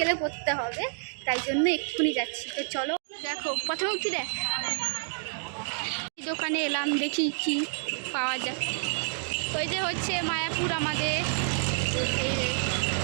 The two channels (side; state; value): left; silent; digital silence